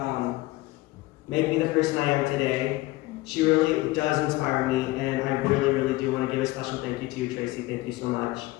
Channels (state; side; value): quieter; right; 19.7 dB